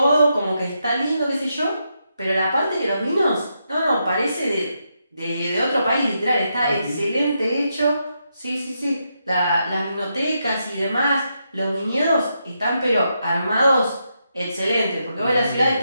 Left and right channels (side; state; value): both; inverted; correlation -0.83